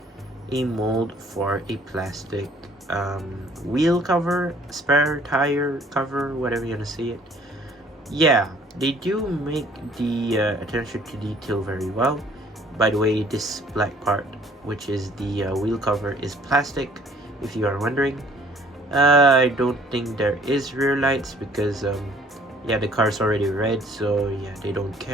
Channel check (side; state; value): both; normal; correlation 0.57